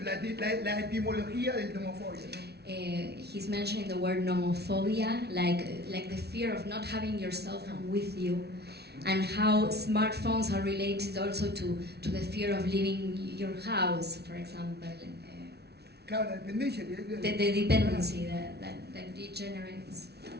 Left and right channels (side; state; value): left; late; 0.48 ms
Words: la etimología del nomofobia, ¿no? He's mentioning the word nomophobia, like the fear of not having your cell phone with you, and how smartphones are related also to the fear of leaving your house, for example. Claro, la dependencia. The dependency that degenerates.